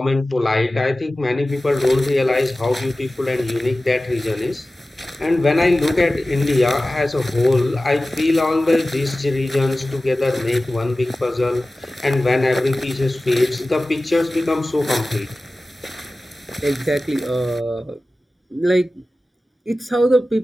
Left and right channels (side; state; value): both; normal; correlation 0.96